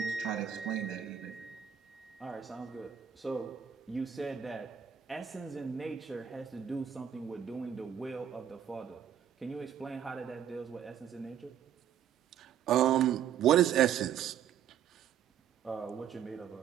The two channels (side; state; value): left; quieter; 9.2 dB